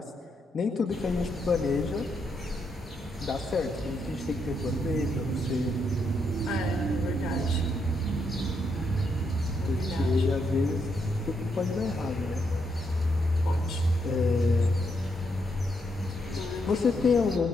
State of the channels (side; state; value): both; normal; correlation 0.78